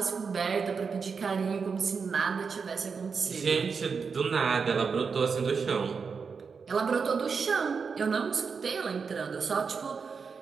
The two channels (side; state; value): left; quieter; 5.5 dB